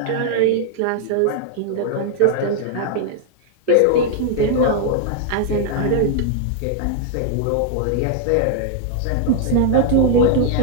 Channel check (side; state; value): both; different; correlation 0.00